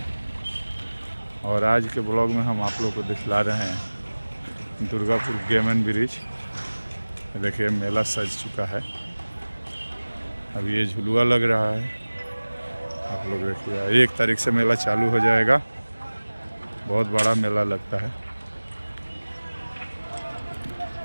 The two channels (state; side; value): inverted; both; correlation -1.00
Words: और आज के ब्लॉग में हम आप लोग को दिखला रहे हैं दुर्गापुर गेम एंड ब्रिज। देखिए, मेला सज चुका है। अब ये झुलुआ लग रहा है। आप लोग देखिए, 1 तारीख से मेला चालू हो जाएगा। बहुत बड़ा मेला लगता है।